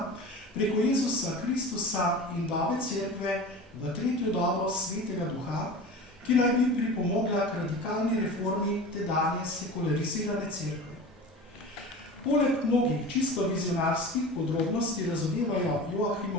preko Jezusa Kristusa in dobe cerkve v 3. dobo Svetega Duha, ki naj bi pripomogla k radikalni reformi tedanje sekularizirane cerkve. Poleg mnogih čisto vizionarskih podrobnosti razodevajo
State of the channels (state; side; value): normal; both; correlation 0.34